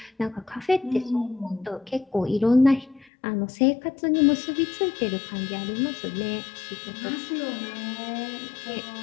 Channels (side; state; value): right; drops out; at 3.1 s